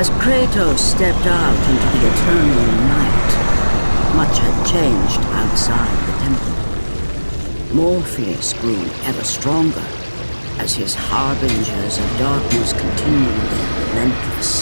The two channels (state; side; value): inverted; both; correlation -1.00